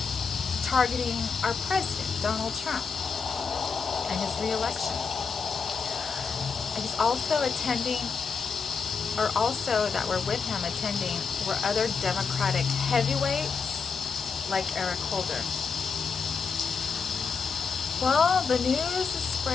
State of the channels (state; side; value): quieter; right; 5.4 dB